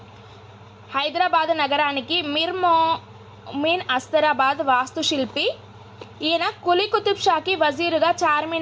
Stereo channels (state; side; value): identical; both; correlation 1.00